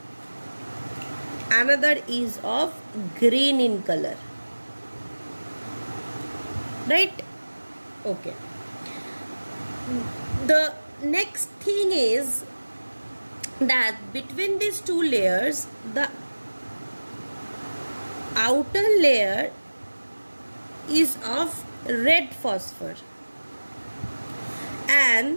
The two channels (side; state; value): both; inverted; correlation -1.00